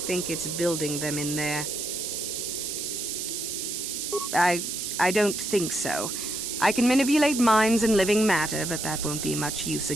it's building them in there. I don't think so. I can manipulate minds and living matter, but that won't be much use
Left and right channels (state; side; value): noise; right; hiss, 4 dB below the sound